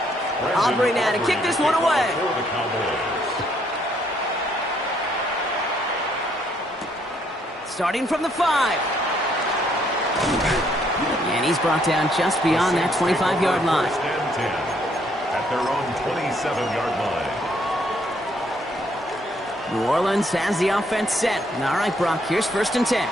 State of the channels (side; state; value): both; normal; correlation 0.69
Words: Aubrey now to kick this one away. Starting from the 5. And he's brought down just beyond that 25-yard line. At their own 27-yard line. New Orleans has the offense set. All right, Brock, here's 1st and 10.